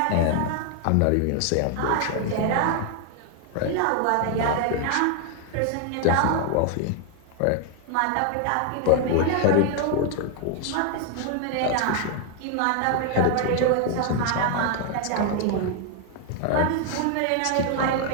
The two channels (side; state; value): both; different; correlation 0.00